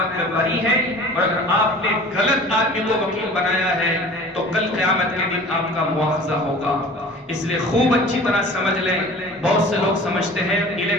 میں بری ہیں، اور اگر آپ نے غلط آدمی کو وکیل بنایا ہے تو کل قیامت کے دن آپ کا مواخذہ ہوگا۔ اس لیے خوب اچھی طرح سمجھ لیں۔ بہت سے لوگ سمجھتے ہیں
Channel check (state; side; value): normal; both; correlation 0.43